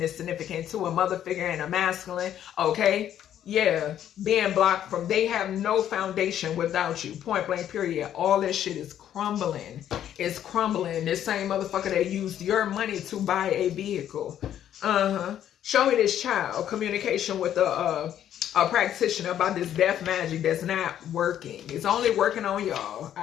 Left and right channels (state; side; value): quieter; right; 10.7 dB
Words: is significant too. A mother figure and a masculine, okay? Yeah, being blocked from, they have no foundation without you. Point blank period. All this shit is crumbling. It's crumbling. This same motherfucker that used your money to buy a vehicle. Show me this child. Communication with a practitioner about this death magic that's not working. It's only working on y'all.